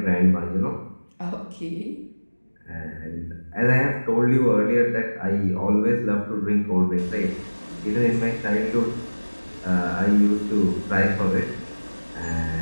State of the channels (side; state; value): both; inverted; correlation -1.00